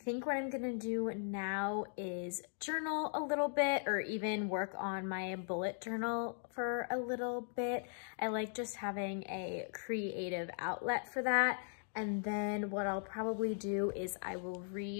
what I'm gonna do now is journal a little bit, or even work on my bullet journal for a little bit. I like just having a creative outlet for that. And then what I'll probably do is I will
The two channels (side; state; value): right; silent; digital silence